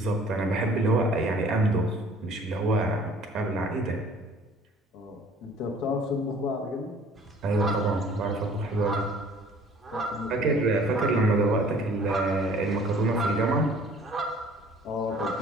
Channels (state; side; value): normal; both; correlation 0.52